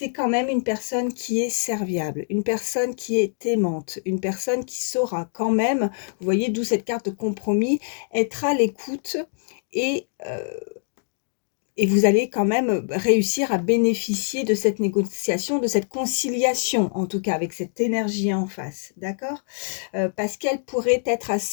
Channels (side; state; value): right; silent; digital silence